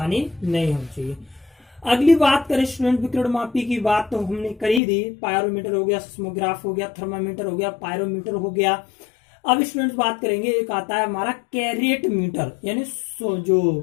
नहीं होनी चाहिए। अगली बात करें स्टूडेंट, विकर्ण मापी की बात तो हमने कर ही दी। पायरोमीटर हो गया, सिस्मोग्राफ हो गया, थर्मामीटर हो गया, पायरोमीटर हो गया। अब स्टूडेंट्स बात करेंगे, एक आता है हमारा कैरेट मीटर, यानी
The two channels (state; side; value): drops out; right; at 4.8 s